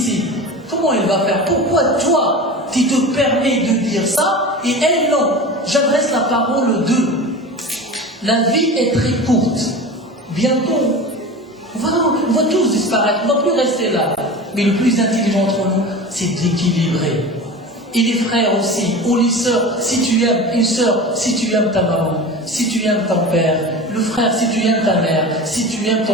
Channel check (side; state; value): both; normal; correlation 0.32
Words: Comment elle va faire? Pourquoi toi, tu te permets de dire ça, et elle non? J'adresse la parole d'eux. La vie est très courte. Bientôt, on va tous disparaître, on ne va plus rester là. Mais le plus intelligent entre nous, c'est d'équilibrer. Et les frères aussi, ou les sœurs, si tu aimes une sœur, si tu aimes ta maman, si tu aimes ton père, le frère, si tu aimes ta mère, si tu aimes